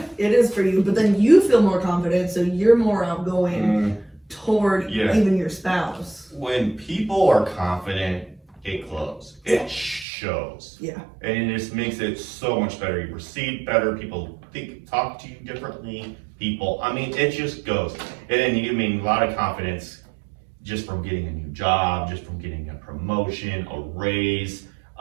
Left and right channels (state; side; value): drops out; left; at 10.1 s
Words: it is for you. But then you feel more confident, so you're more outgoing toward even your spouse. When people are confident, it glows. It shows. Yeah. And it just makes it so much better. You receive better. People talk to you differently. It just goes. And then a lot of confidence just from getting a new job, just from getting a promotion, a raise,